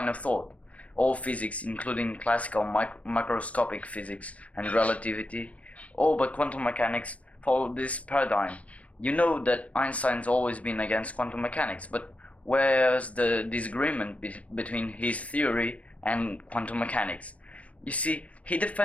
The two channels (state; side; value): late; right; 0.066 ms